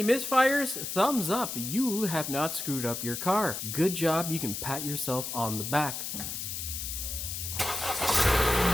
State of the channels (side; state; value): left; noise; hiss, 5 dB below the sound